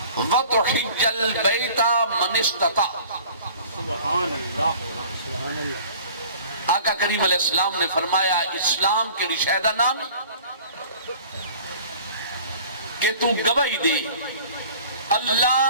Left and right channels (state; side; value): inverted; both; correlation -0.48